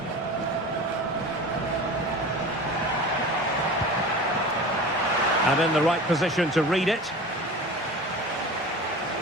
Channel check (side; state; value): both; normal; correlation 0.35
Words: And in the right position to read it.